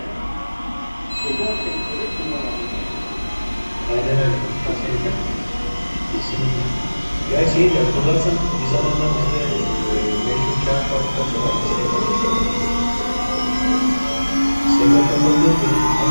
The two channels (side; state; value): both; inverted; correlation -1.00